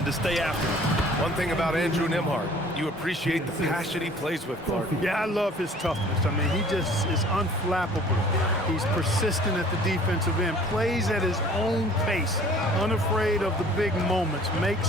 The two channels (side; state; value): both; normal; correlation 0.51